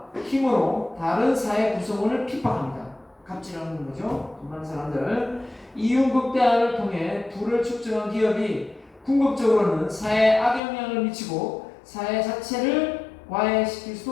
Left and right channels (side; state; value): right; drops out; at 10.6 s